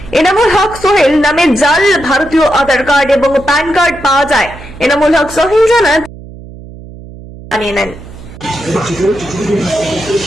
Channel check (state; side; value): noise; right; hum, 16 dB below the sound